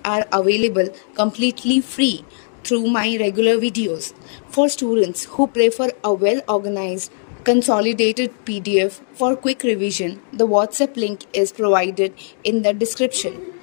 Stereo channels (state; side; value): silent; right; digital silence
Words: are available completely free through my regular videos. For students who prefer a well-organized, consolidated PDF for quick revision, the WhatsApp link is provided in the description.